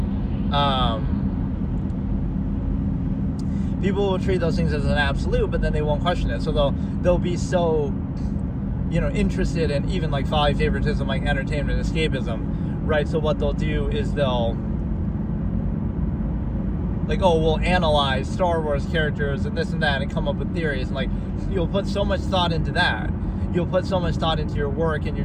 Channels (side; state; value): both; identical; correlation 1.00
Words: people will treat those things as an absolute, but then they won't question it. So they'll be so, you know, interested in even like folly, favoritism, like entertainment, escapism, right? So what they'll do is they'll like, oh, we'll analyze Star Wars characters and this and that and come up with theories. And like, you'll put so much thought into that. You'll put so much thought into your work and